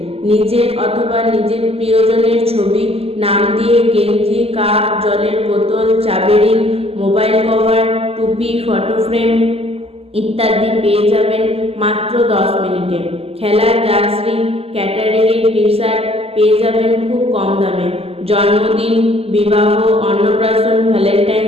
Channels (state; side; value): late; left; 0.29 ms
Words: নিজের অথবা নিজের প্রিয়জনের ছবি, নাম দিয়ে গেঞ্জি, কাপ, জলের বোতল, চাবি রিং, মোবাইল কভার, টুপি, ফটো ফ্রেম ইত্যাদি পেয়ে যাবেন মাত্র 10 মিনিটে। খেলার জার্সি, ক্যাটারিংয়ের টি শার্ট পেয়ে যাবেন খুব কম দামে। জন্মদিন, বিবাহ, অন্নপ্রাশন,